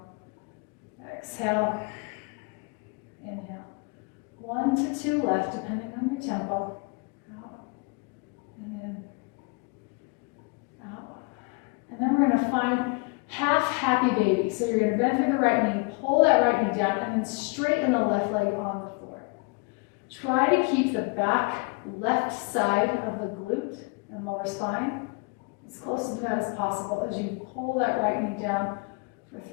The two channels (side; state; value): right; quieter; 30.6 dB